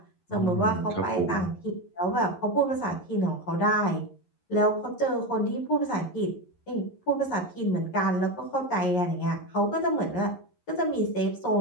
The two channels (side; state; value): right; late; 11 ms